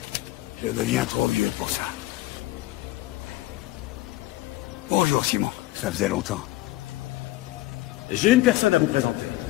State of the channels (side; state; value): right; quieter; 17.6 dB